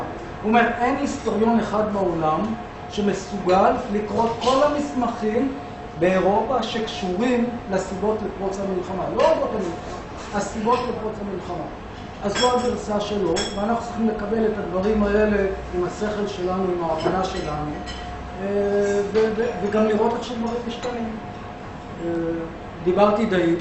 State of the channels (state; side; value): identical; both; correlation 1.00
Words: הוא אומר, אין היסטוריון אחד בעולם שמסוגל לקרוא כל המסמכים באירופה שקשורים לסיבות לפרוץ המלחמה. לא אורות המלחמה, הסיבות לפרוץ המלחמה. אז זו הגרסה שלו, ואנחנו צריכים לקבל את הדברים האלה עם השכל שלנו, עם ההבנה שלנו, וגם לראות איך שדברים משתנים. דיברתי די,